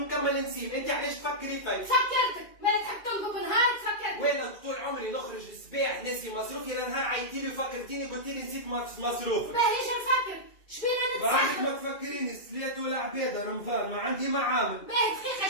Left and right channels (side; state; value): right; late; 2.4 ms